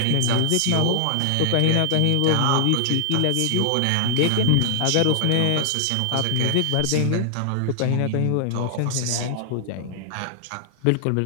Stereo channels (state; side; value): different; both; correlation 0.00